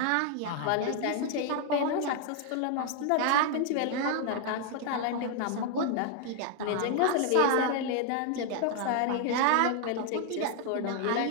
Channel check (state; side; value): different; both; correlation 0.00